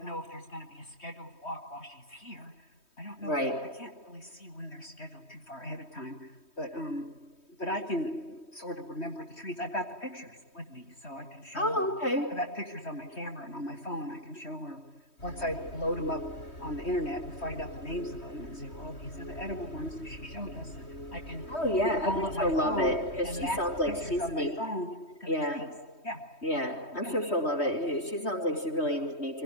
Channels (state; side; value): late; right; 3.2 ms